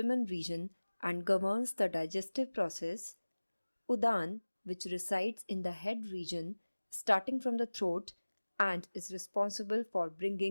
region and governs the digestive process; Udana, which resides in the head region starting from the throat and is responsible for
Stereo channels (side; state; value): both; inverted; correlation -1.00